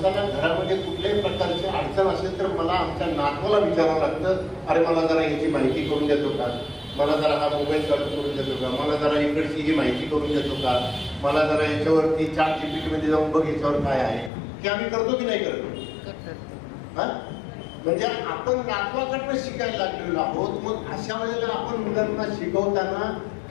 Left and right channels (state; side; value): drops out; right; at 14.3 s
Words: घरामध्ये कुठल्याही प्रकारची अडचण असेल तर मला आमच्या नातवाला विचारावं लागतं, अरे मला जरा याची माहिती करून देतो का, मला जरा हा मोबाईल चालू करून देतो का, मला जरा इकडची ही माहिती करून देतो का, मला जरा याच्यावरती ChatGPT मध्ये जाऊन बघ याच्यावर काय आहे. की आम्ही करतो की नाही करतो? हा, म्हणजे आपण नातवाकडनं शिकायला लागलेलो आहोत. मग अशा वेळेला आपण मुलांना शिकवताना